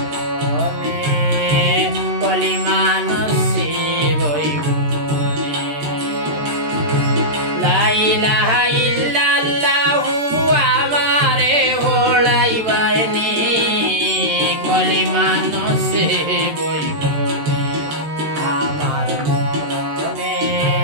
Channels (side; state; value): left; late; 13 ms